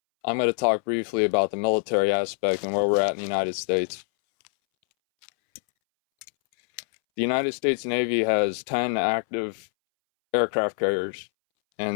going to talk briefly about the military aspect and where we're at in the United States. The United States Navy has 10 active aircraft carriers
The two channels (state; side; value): silent; right; 62 dB below the other